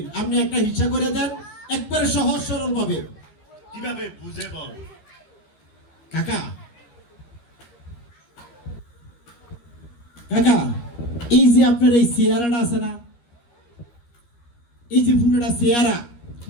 আপনি একটা হিসাব করে দেন একবারে সহজ সরল ভাবে কিভাবে বুঝে বল কাকা কাকা এই যে আপনার এই চেয়ারাটা আছে না এই যে পুরোটা চেয়ারা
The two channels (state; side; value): late; right; 13 ms